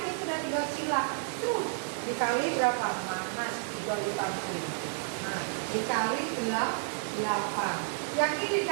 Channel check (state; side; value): silent; left; 57 dB below the other